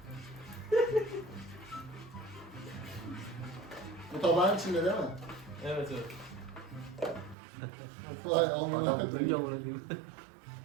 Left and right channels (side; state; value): left; drops out; at 7.4 s